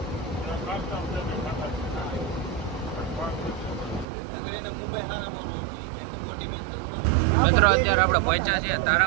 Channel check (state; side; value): drops out; left; at 4.0 s